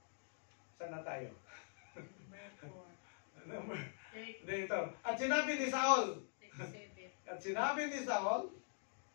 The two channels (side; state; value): right; silent; digital silence